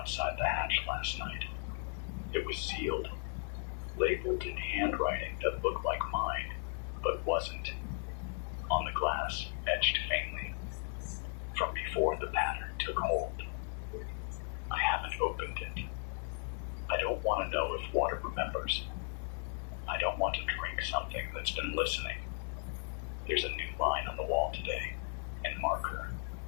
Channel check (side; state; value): right; silent; 54 dB below the other